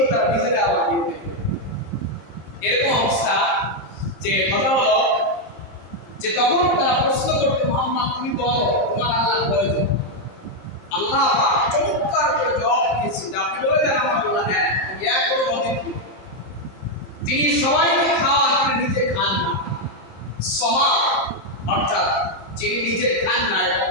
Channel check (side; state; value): right; late; 27 ms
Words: তারা নিজেরা আবার দিয়ে দেবে। এরকম অবস্থা যে কথা হলো যে তখন তারা প্রশ্ন করতো, মুহাম্মদ তুমি বলো তোমার আল্লাহ কয়জন? আল্লাহ পাক চমৎকার করে জবাব দিয়েছেন যে আপনি বলে দেন আমার আল্লাহ হ্যাঁ আমি এক কোনো অদ্বিতীয়, তিনি সবাইকে খাওয়ান, তিনি নিজে খান না। সমা অর্থাৎ যিনি নিজে খান না